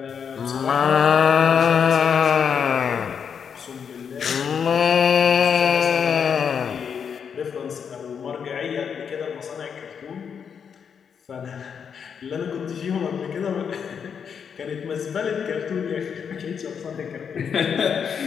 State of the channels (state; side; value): quieter; right; 7.0 dB